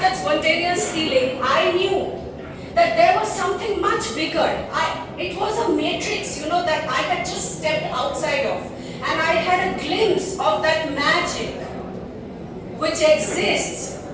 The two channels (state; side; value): identical; both; correlation 1.00